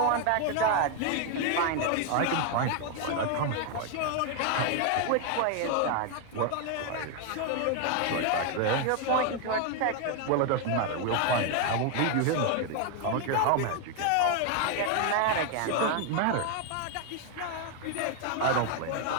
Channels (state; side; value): different; both; correlation 0.01